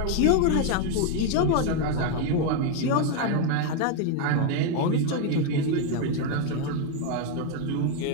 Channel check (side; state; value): both; different; correlation 0.01